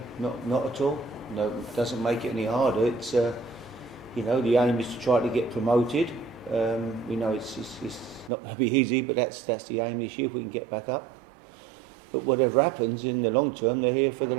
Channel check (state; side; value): drops out; left; at 8.3 s